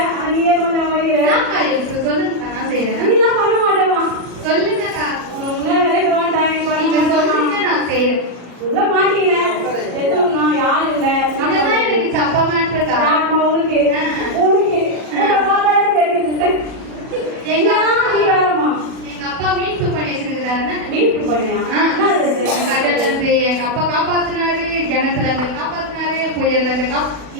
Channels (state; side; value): late; left; 40 ms